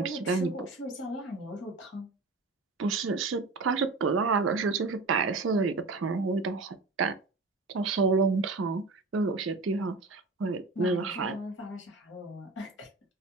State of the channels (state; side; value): quieter; left; 3.6 dB